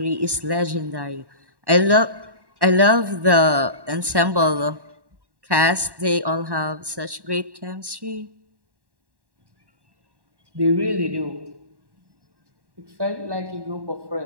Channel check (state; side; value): late; left; 1.1 ms